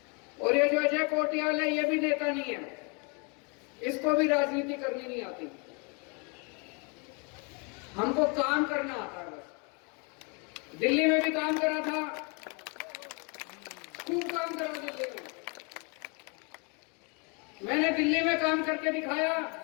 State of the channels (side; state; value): right; quieter; 33.6 dB